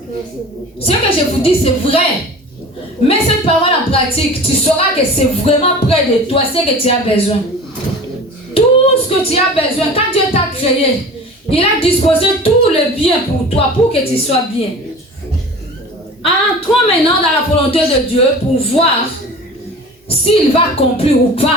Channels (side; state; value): both; normal; correlation 0.39